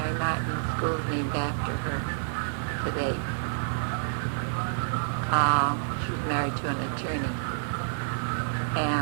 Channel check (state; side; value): silent; left; digital silence